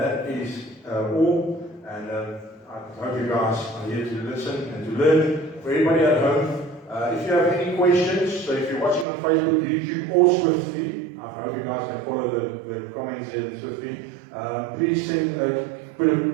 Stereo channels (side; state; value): left; drops out; at 9.1 s